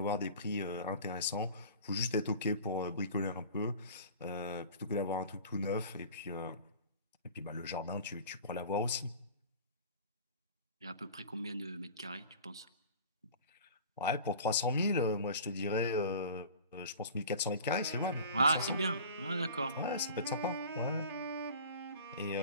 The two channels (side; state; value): both; inverted; correlation -0.41